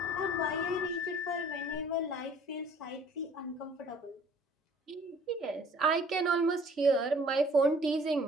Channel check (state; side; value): normal; both; correlation 0.55